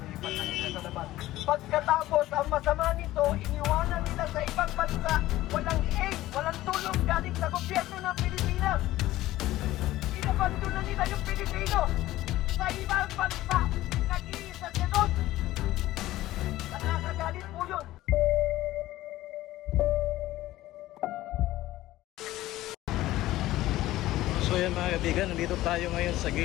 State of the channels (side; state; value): right; quieter; 15.9 dB